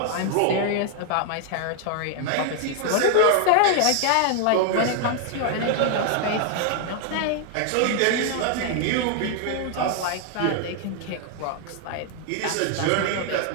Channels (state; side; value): different; both; correlation 0.00